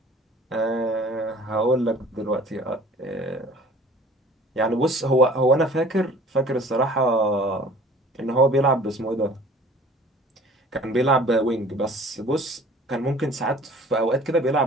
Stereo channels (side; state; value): both; normal; correlation 0.49